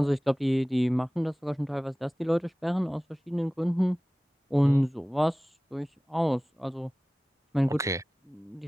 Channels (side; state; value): both; normal; correlation 0.98